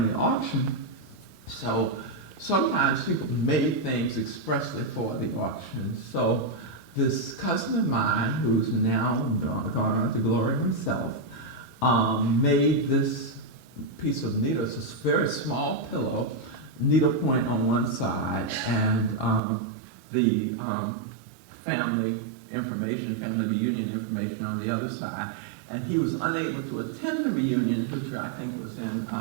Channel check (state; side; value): drops out; left; at 19.4 s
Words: auction. So sometimes people made things expressly for the auction. So this cousin of mine, who's now gone on to glory himself, made this piece of needle. It's a very small pillow, needle point on one side, and the family information, family reunion information on the other side. and he was unable to attend the reunion, which I think was in